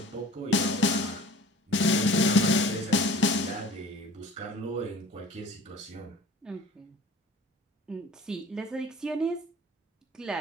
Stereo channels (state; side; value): normal; both; correlation 0.44